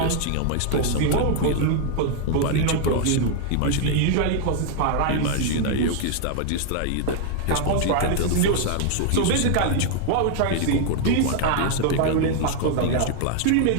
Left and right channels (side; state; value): both; different; correlation 0.00